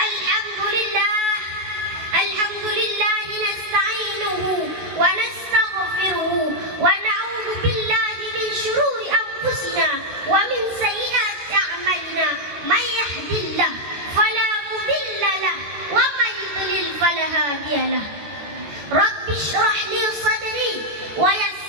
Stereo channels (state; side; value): late; left; 14 ms